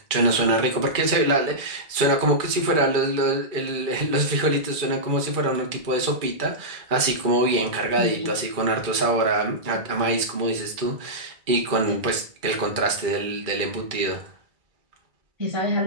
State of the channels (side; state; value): left; late; 2.3 ms